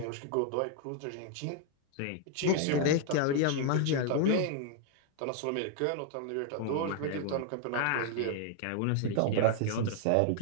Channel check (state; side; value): different; both; correlation 0.00